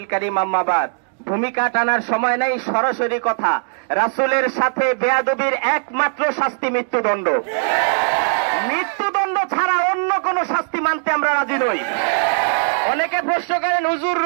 কারীম, আম্মা বাদ। ভূমিকা টানার সময় নেই, সরাসরি কথা। রাসূলের সাথে বেয়াদবির একমাত্র শাস্তি মৃত্যুদণ্ড। মৃত্যুদণ্ড ছাড়া অন্য কোন শাস্তি মানতে আমরা রাজি নই। অনেকে প্রশ্ন করেন, হুজুর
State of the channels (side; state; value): left; silent; digital silence